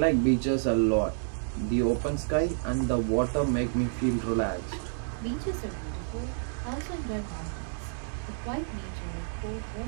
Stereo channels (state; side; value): silent; left; digital silence